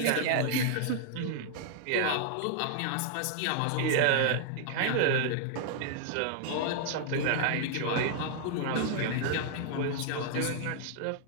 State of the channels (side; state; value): both; different; correlation -0.01